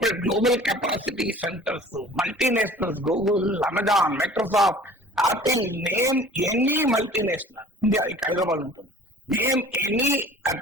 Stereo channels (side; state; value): both; normal; correlation 0.47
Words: global capacity centres, multinationals, Google, Amazon, Microsoft, Apple, name any multinational India Hyderabad ఉంటుంది. Name any